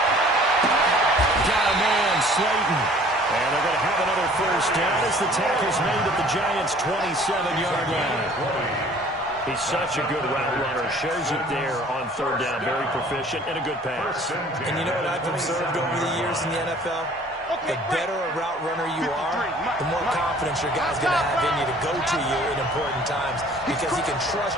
Got a man, Slayton. And they're going to have another 1st down as the tackle's made at the Giants' 27-yard line. He's such a good route runner. Shows it there on 3rd down. Very proficient and a good pass. And you know what I've observed over the years in the NFL? The better a route runner you are, the more confidence your guy's going to have in you to go to you in important times because he can trust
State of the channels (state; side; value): normal; both; correlation 0.52